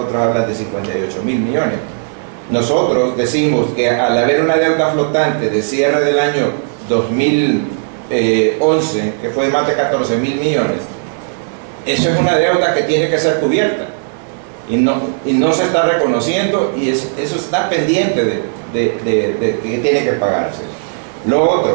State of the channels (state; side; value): silent; left; digital silence